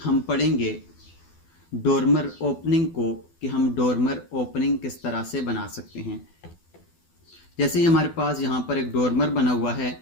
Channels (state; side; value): late; right; 12 ms